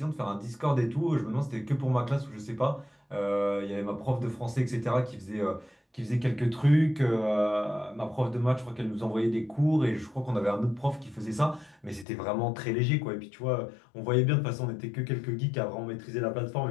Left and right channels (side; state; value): right; drops out; at 12.1 s